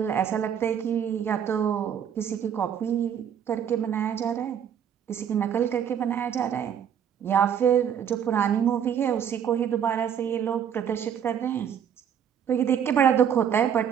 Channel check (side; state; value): left; quieter; 8.6 dB